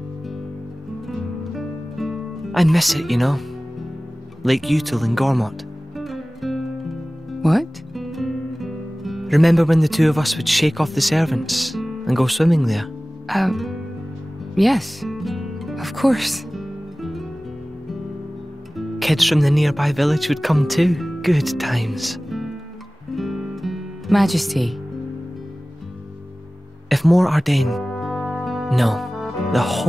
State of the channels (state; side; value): normal; both; correlation 0.98